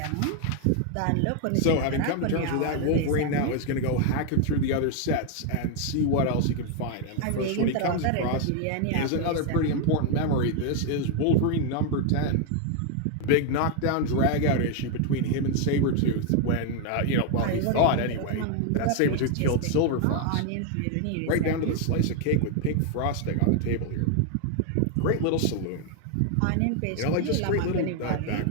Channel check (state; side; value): different; both; correlation 0.01